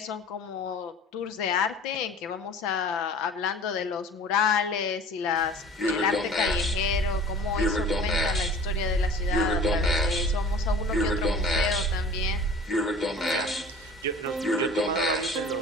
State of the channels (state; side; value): normal; both; correlation 0.43